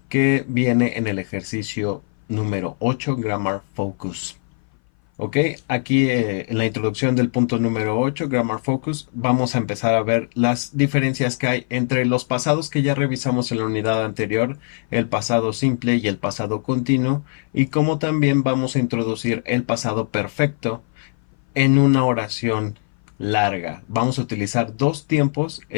que viene en el ejercicio número 8, Grammar Focus. Ok, aquí en la introducción del punto número 8, Grammar Focus, vamos a empezar a ver las diferencias que hay entre los pasados que ya revisamos en la unidad anterior, el pasado simple y el pasado continuo, y cómo también vamos a introducir el pasado perfecto en una oración larga. Vamos a utilizar dos tiempos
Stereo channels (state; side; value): silent; right; 58 dB below the other